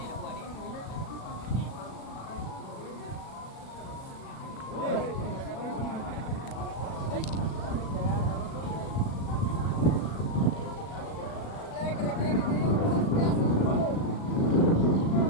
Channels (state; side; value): late; right; 37 ms